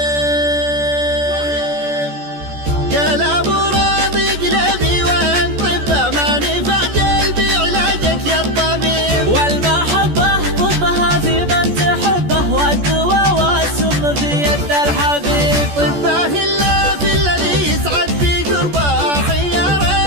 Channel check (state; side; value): late; left; 14 ms